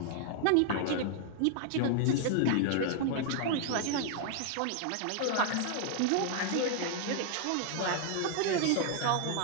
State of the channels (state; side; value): different; both; correlation 0.00